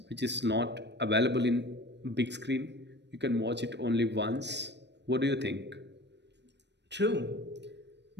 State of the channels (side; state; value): left; late; 0.50 ms